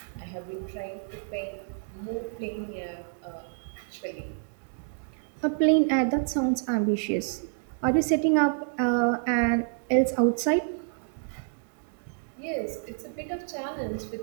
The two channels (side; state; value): left; silent; digital silence